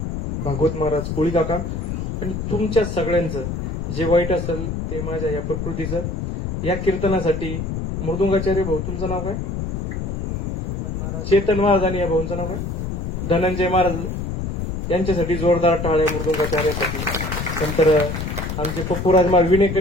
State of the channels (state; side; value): noise; left; rumble, 4 dB below the sound